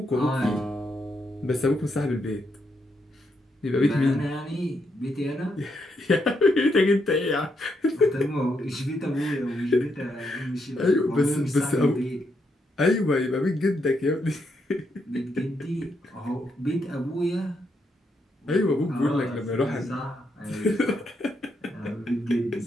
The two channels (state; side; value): normal; both; correlation 0.79